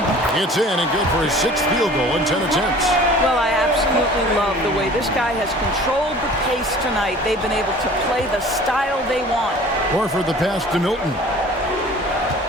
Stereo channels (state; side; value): normal; both; correlation 0.46